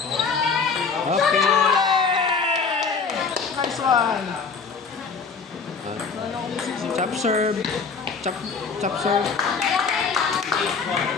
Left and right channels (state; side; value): quieter; right; 5.3 dB